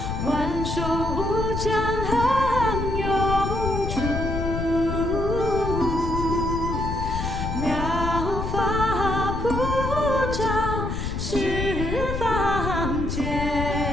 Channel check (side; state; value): left; noise; rumble, 4 dB below the sound